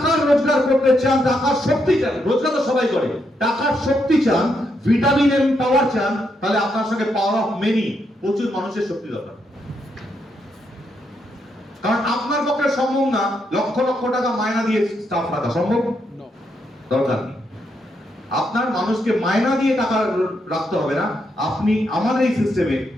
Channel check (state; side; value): normal; both; correlation 0.79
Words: রোজগার করতে চান, টাকার শক্তি চান, রোজগার তো সবাই করে, টাকার শক্তি চান, ভিটামিন এম পাওয়ার চান, তাহলে আপনার সঙ্গে পাওয়ার অফ মেনি, প্রচুর মানুষের শক্তি দরকার। কারণ আপনার পক্ষে সম্ভব না লক্ষ লক্ষ টাকা মায়না দিয়ে স্টাফ রাখা, সম্ভব দরকার নেই। আপনার মানুষকে মায়না দিয়ে টাকা রাখতে হবে না। আপনি আমাদের এই সিস্টেমে